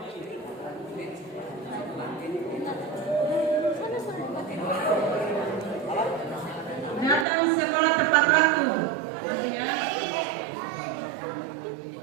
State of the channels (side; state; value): left; drops out; at 7.2 s